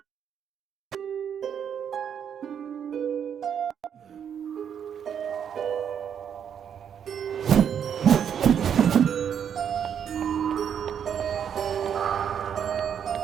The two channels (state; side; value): quieter; left; 8.3 dB